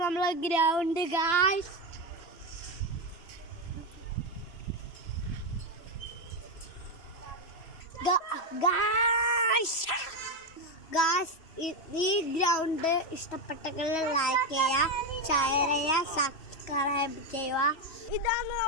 നമ്മളെ ഗ്രൗണ്ട് ഗായ്സ്. ഈ ഗ്രൗണ്ട് ഇഷ്ടപ്പെട്ടെങ്കിൽ ലൈക്ക് ചെയ്യുക, ഷെയർ ചെയ്യുക, സബ്സ്ക്രൈബ് ചെയ്യുക. ഇതാണ്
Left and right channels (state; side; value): late; right; 3.0 ms